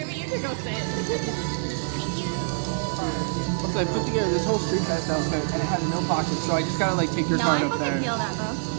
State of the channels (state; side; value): silent; left; 61 dB below the other